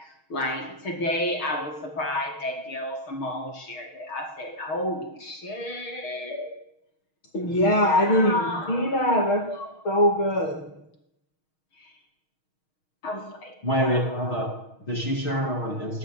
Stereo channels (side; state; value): right; late; 6.4 ms